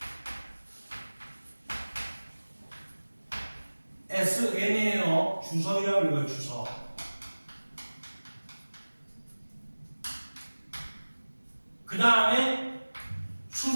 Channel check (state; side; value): inverted; both; correlation -1.00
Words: SN이에요. 주석이라고 읽어요. 주석. 그 다음에